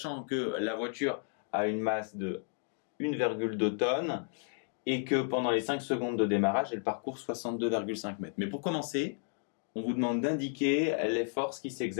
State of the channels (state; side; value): silent; right; 56 dB below the other